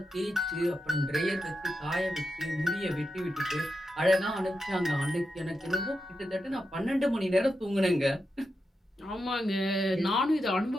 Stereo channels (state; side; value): normal; both; correlation 0.88